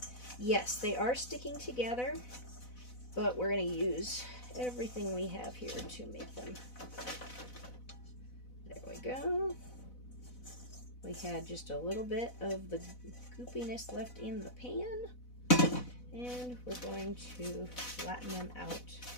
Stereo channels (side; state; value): right; late; 4.0 ms